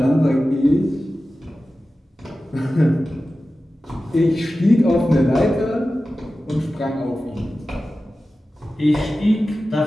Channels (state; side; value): normal; both; correlation 0.95